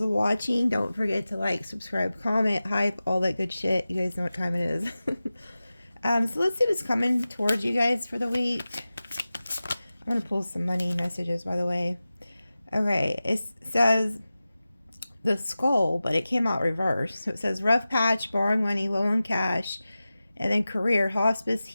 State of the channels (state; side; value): inverted; both; correlation -0.95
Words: watching. Don't forget to like, subscribe, comment, hype, all that good shit. You guys know what time it is. So let's see what's coming towards you guys for the week. I'm going to pull some money messages, by the way. Okay, it says the skull, but it came out reversed. So it says rough patch, borrowing money, low on cash, and then career, hospice,